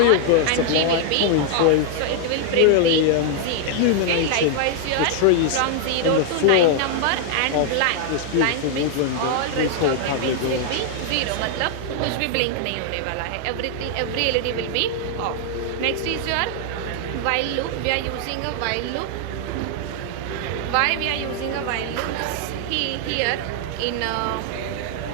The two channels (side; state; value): both; different; correlation 0.00